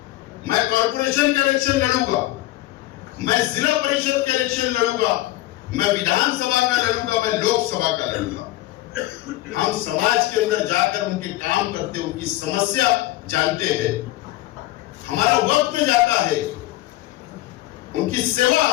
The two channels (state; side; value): quieter; right; 16.6 dB